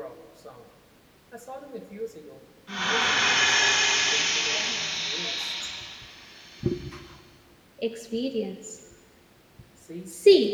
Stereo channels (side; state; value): both; identical; correlation 1.00